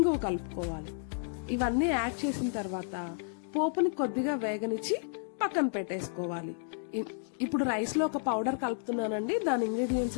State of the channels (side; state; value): right; silent; digital silence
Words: కలుపుకోవాలి. ఇవన్నీ యాడ్ చేసిన తర్వాత పోపుని కొద్దిగా వేగనిచ్చి పక్కన పెట్టేసుకోవాలి. ఇప్పుడు రైస్ లో ఒక పౌడర్ కలుపుతున్నానండి. దాని